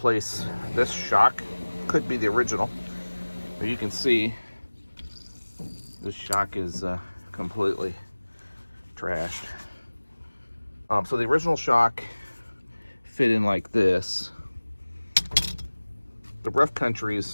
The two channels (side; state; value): both; inverted; correlation -1.00